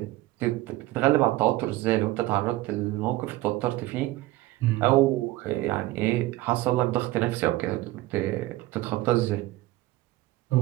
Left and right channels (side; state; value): left; quieter; 17.5 dB